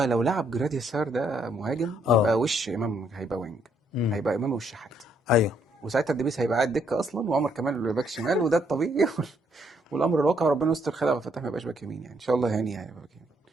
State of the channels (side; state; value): both; normal; correlation 0.71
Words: لو لعب جرادي سار ده مهاجم، اه. يبقى وش امام هيبقى وينج، امم. هيبقى امام والشحات. ايوه. وساعتها الدبيس هيبقى قاعد دكه اصلا، وعمر كمال باك شمال، وده الطبيعي. والامر الواقع ربنا يستر، خير عبد الفتاح ما يبقاش باك يمين يعني، ان شاء الله يعني هيبقى باك يمين.